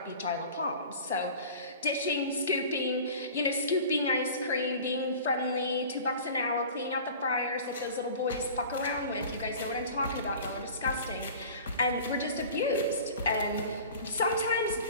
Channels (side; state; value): both; inverted; correlation -0.41